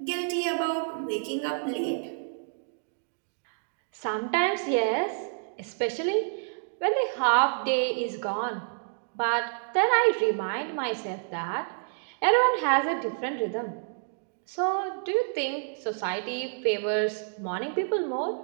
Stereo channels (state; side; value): silent; left; digital silence